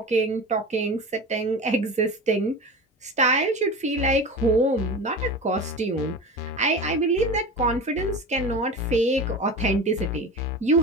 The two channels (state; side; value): normal; both; correlation 0.30